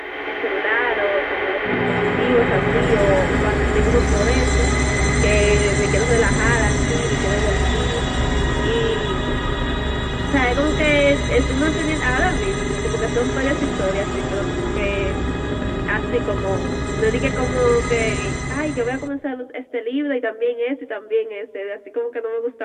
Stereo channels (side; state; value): both; identical; correlation 1.00